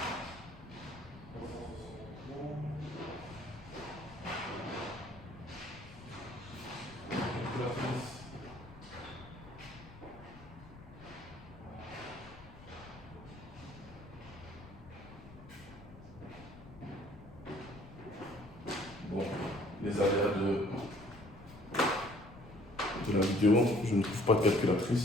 Bon, les aléas de la vidéo, je ne trouve pas de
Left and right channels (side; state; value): left; noise; rumble, 18 dB below the sound